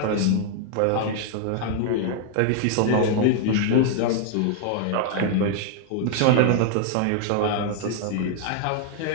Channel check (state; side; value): different; both; correlation 0.00